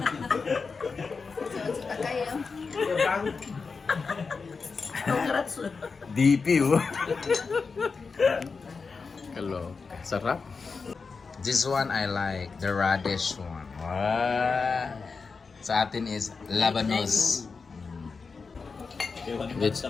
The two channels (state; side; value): quieter; right; 4.8 dB